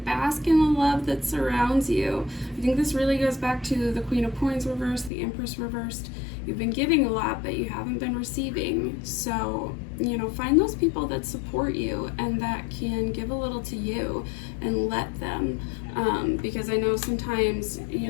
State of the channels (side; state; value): right; drops out; at 5.1 s